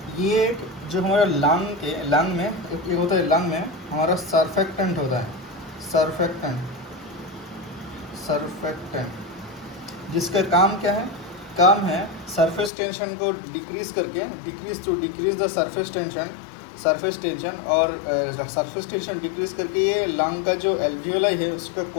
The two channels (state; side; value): drops out; right; at 12.7 s